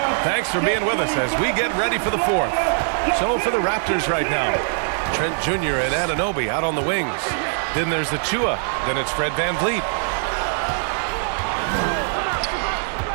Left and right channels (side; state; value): left; silent; digital silence